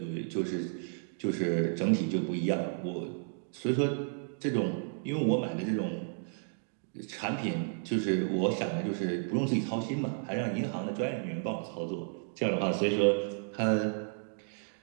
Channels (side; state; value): left; silent; digital silence